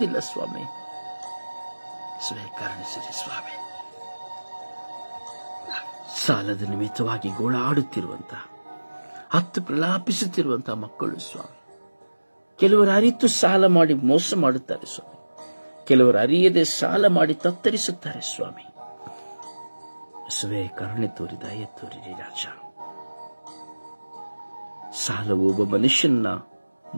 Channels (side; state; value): both; inverted; correlation -1.00